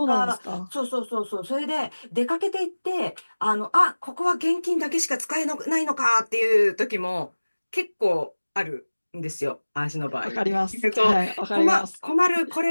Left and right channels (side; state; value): both; inverted; correlation -1.00